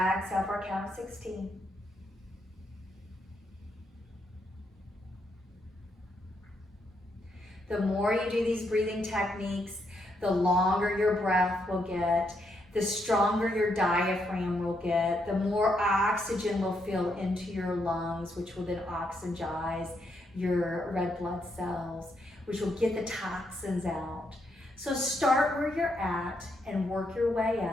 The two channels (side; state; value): both; normal; correlation 0.77